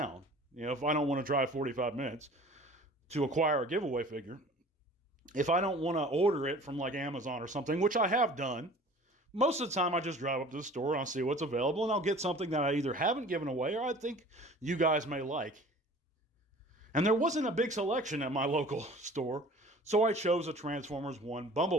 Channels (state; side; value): normal; both; correlation 0.45